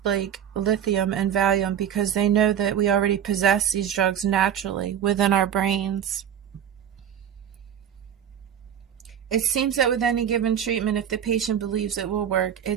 like lithium and Valium because they know that we already possess these drugs naturally within our brains. It seems that with any given treatment, if the patient believes it will work,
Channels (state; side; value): quieter; left; 9.2 dB